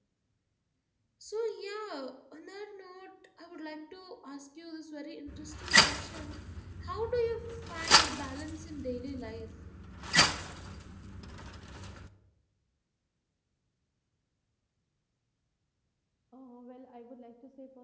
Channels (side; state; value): both; identical; correlation 1.00